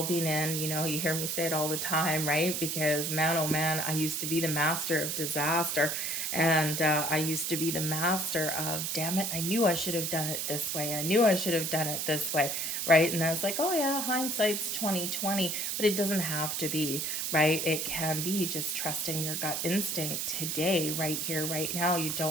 been in, you hear me say it all the time, right? Because man, oh man, I used to be the master of disaster, and I used to be the master of, damn it, I knew I should have done it this way. I knew I should have done it this way, right? And that's like, oh yeah, hindsight's 2020, but it doesn't have to be, right? It can be just trusting your gut instinct today, right here, right now. You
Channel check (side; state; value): right; noise; hiss, 1 dB below the sound